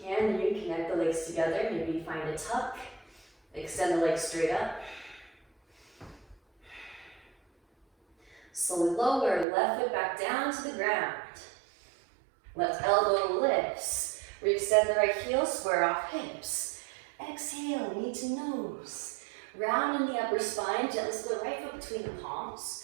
Can you connect the legs together? Maybe find a tuck. Extend the legs straight up. Slowly lower, left foot back down to the ground. Left elbow lifts. Re-extend the right heel, square off hips. Exhale, knee to nose. Round in the upper spine, gently slip the right foot between the palms.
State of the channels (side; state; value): left; drops out; at 9.5 s